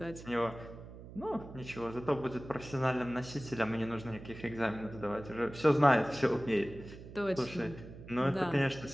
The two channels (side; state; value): right; noise; hum, 15 dB below the sound